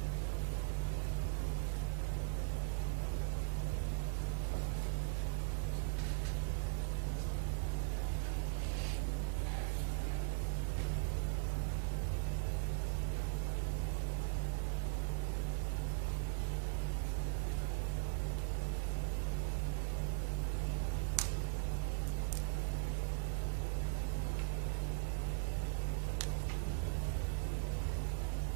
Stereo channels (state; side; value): silent; left; digital silence